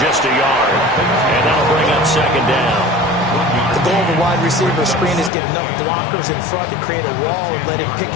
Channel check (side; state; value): right; drops out; at 5.3 s